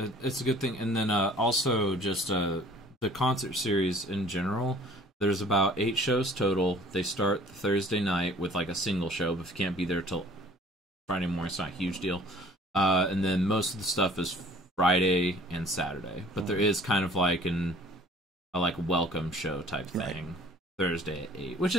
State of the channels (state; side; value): normal; both; correlation 0.52